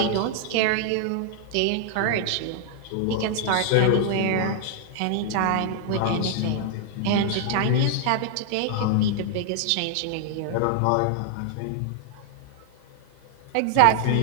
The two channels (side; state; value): both; different; correlation 0.00